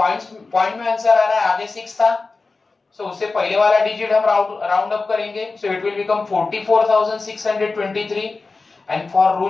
में answer आ रहा है, आगे 6 था. सो उससे पहले वाला डिजिट हम राउंड अप करेंगे. So it will become 44,623 and for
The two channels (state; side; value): quieter; right; 3.9 dB